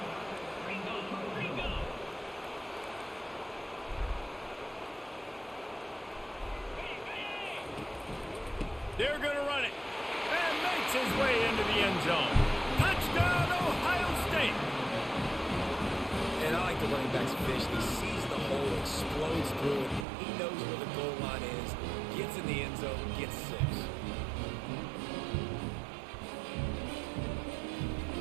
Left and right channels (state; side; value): drops out; left; at 20.1 s